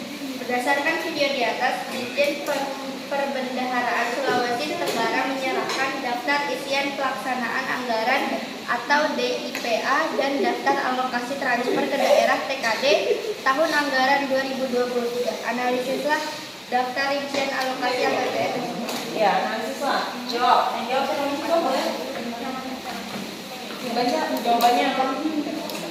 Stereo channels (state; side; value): identical; both; correlation 1.00